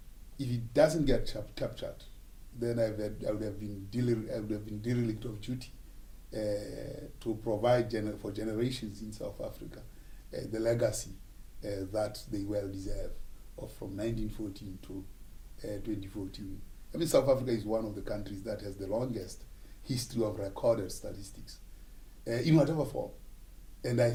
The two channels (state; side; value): identical; both; correlation 1.00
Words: If it doesn't get captured, then I would have been derelict of duty to provide for generations in South Africa the legacy that they well deserve from 1914 to 2014. I mean, South Africa is one of the countries that has the longest history of recorded statistics in whatever form. And I